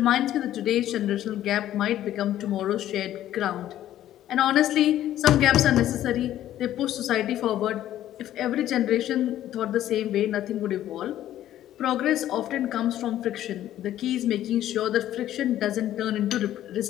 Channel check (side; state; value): right; quieter; 12.6 dB